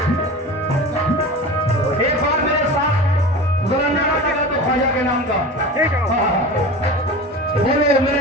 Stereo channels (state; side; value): normal; both; correlation 0.33